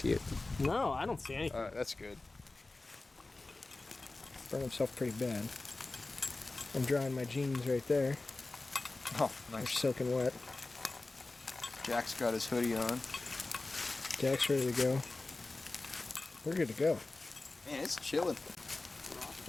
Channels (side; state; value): right; quieter; 3.2 dB